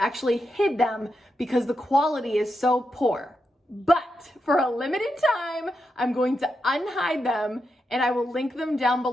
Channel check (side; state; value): both; normal; correlation 0.86